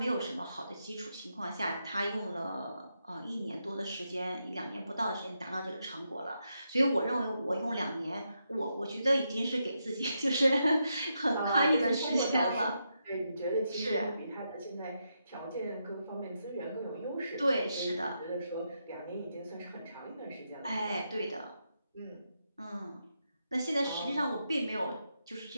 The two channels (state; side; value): inverted; both; correlation -0.83